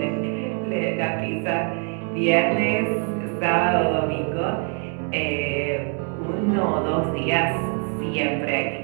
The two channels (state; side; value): quieter; left; 38.8 dB